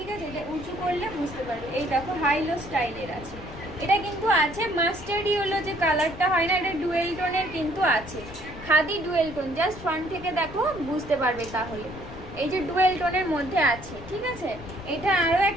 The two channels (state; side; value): noise; left; rumble, 15 dB below the sound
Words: আছে। এটা উঁচু করলে বুঝতে পারবে, এই দেখো হাই লো স্টাইলের আছে। এটা কিন্তু আছে মাস্টার্ড ইয়েলো যে কালারটা হয় না, এটা ডুয়েল টোনের কিন্তু আছে, khadi dual tone. Just front থেকে দেখো বুঝতে পারবে তাহলে, এই যে ডুয়েল টোনের মধ্যে আছে, ঠিক আছে। এটা আরো